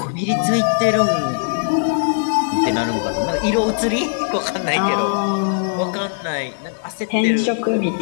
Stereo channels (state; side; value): silent; right; digital silence